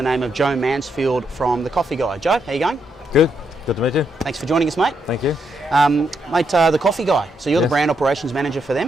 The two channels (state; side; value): normal; both; correlation 0.79